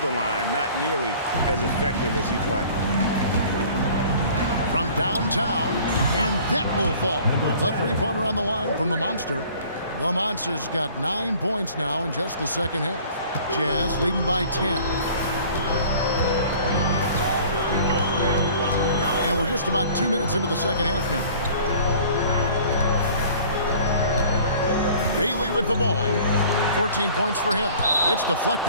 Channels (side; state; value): both; inverted; correlation -0.49